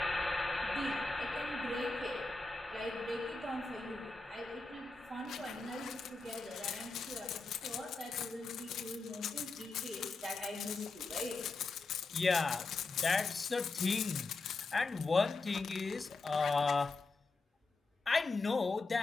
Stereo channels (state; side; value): quieter; right; 3.7 dB